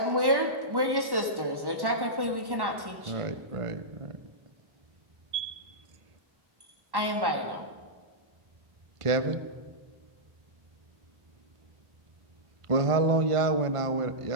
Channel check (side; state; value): left; late; 1.1 ms